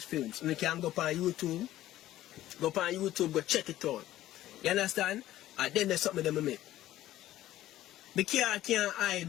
films. And you can go up on YouTube, go check it out. You understand? And then there's something that I make. The car can't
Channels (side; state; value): right; quieter; 14.2 dB